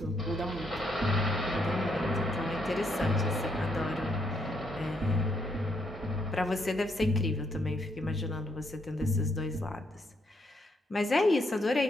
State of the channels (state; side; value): normal; both; correlation 0.75